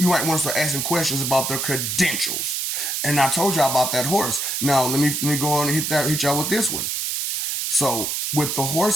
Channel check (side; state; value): right; noise; hiss, 1 dB below the sound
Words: want to start asking questions about their credentials. And I told y'all about that horse. Now let me go on and hit y'all with this one. So with the